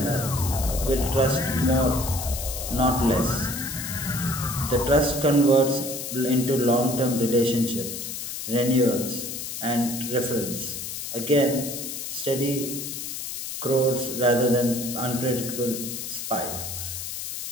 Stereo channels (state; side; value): noise; left; hiss, 6 dB below the sound